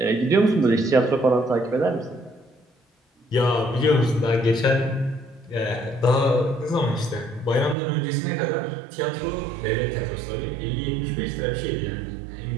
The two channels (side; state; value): left; drops out; at 7.8 s